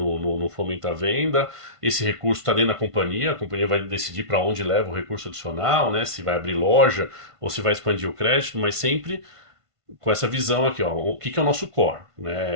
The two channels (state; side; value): late; left; 1.5 ms